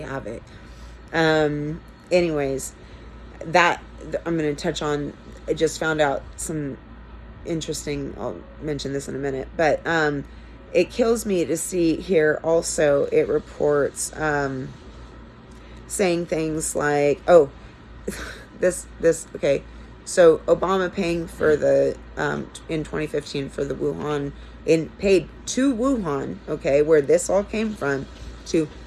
have it. Anyways, that I'm going to touch on. I just found out some interesting, I'll mention this in a minute, but it kills me to see here also it reports saying things like, oh, this okay, so Obama paying for the in 2015 for the Wuhan, paid to Wuhan, okay, where this all came from, to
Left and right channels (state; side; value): identical; both; correlation 1.00